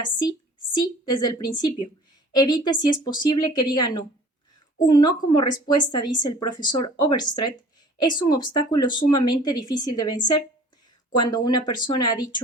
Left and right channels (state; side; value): normal; both; correlation 0.49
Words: sí, sí desde el principio. Evite, si es posible, que diga no. Un no como respuesta, dice el profesor Overstreet, es un obstáculo sumamente difícil de vencer. Cuando una persona ha